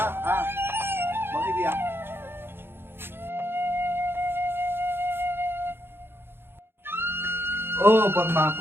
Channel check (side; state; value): left; late; 0.11 ms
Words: বহিবি আহ। পদ্মা